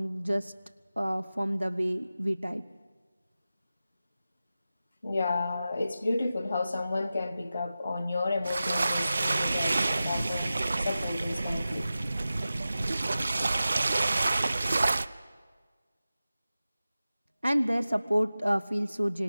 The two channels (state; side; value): inverted; both; correlation -0.94